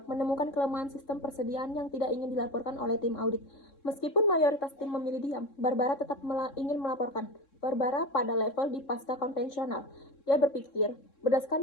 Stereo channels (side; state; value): right; late; 3.7 ms